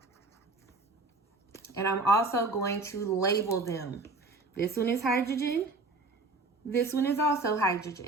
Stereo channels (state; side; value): quieter; left; 3.3 dB